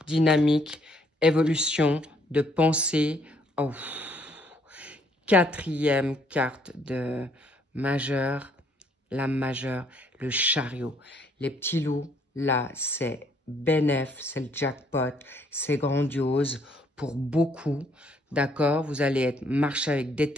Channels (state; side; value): normal; both; correlation 0.66